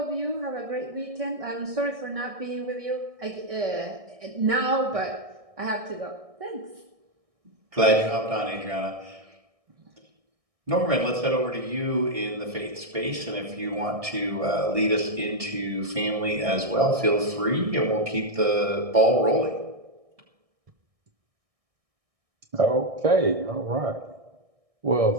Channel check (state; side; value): late; left; 1.6 ms